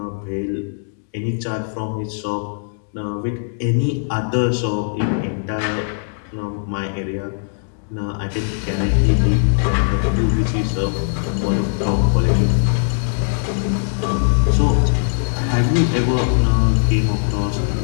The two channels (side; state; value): right; silent; digital silence